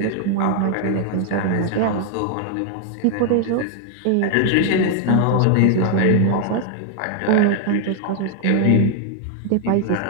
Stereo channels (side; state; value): both; different; correlation 0.00